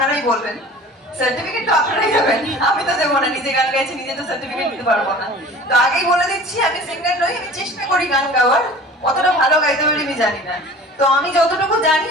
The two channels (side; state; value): both; normal; correlation 0.43